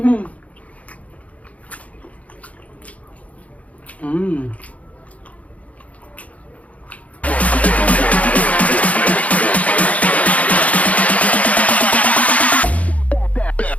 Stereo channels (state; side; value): late; right; 0.068 ms